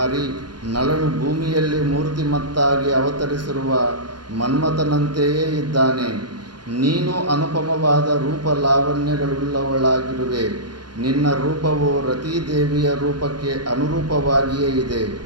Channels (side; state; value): left; late; 0.71 ms